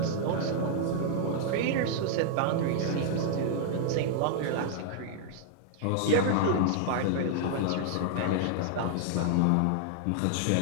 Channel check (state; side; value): different; both; correlation 0.00